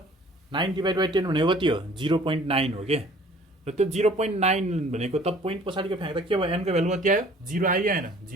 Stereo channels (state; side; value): normal; both; correlation 0.52